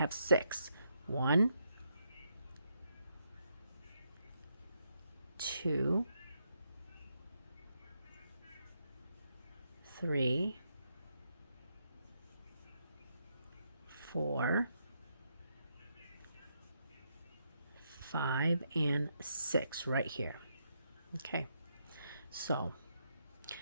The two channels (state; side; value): inverted; both; correlation -0.79